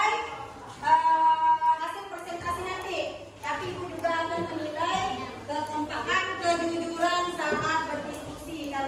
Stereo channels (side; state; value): both; identical; correlation 1.00